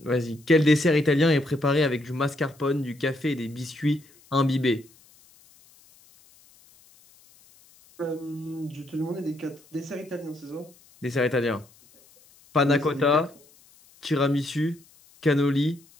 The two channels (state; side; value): noise; left; hiss, 28 dB below the sound